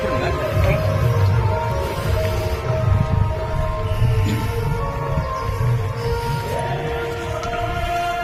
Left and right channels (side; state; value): both; identical; correlation 1.00